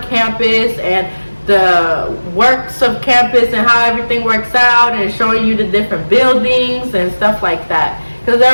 campus and the works of campus and how everything works out, and showing you the different buildings and stuff like that, because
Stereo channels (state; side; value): inverted; both; correlation -1.00